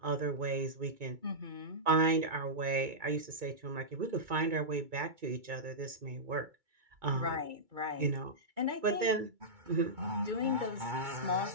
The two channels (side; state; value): left; late; 2.3 ms